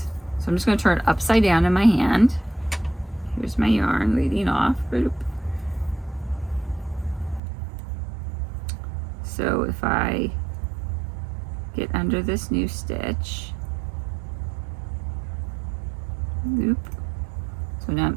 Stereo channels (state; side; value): drops out; left; at 7.4 s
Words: I'm just going to turn it upside down in my hand. Here's my yarn leading off. So if I get under this new stitch, loop. So So now I'm